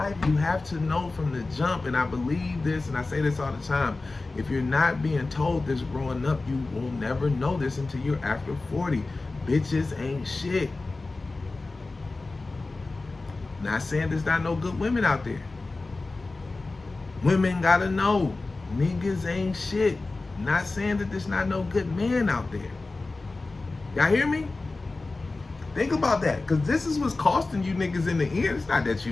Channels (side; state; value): right; quieter; 3.4 dB